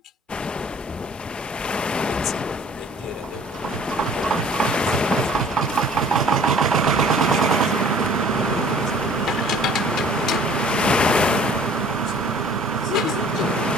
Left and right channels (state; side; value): normal; both; correlation 0.53